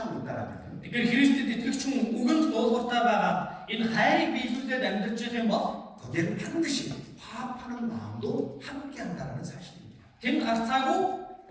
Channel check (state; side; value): identical; both; correlation 1.00